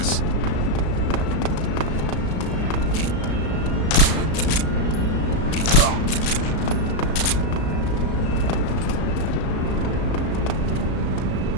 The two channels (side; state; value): right; late; 35 ms